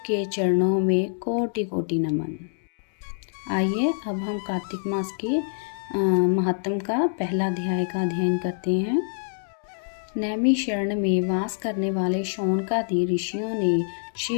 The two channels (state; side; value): silent; right; digital silence